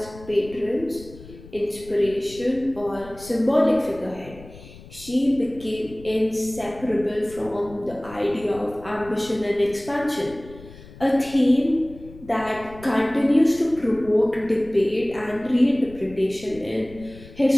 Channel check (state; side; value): noise; left; rumble, 18 dB below the sound